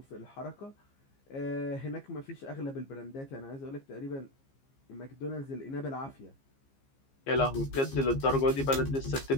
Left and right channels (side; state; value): right; late; 15 ms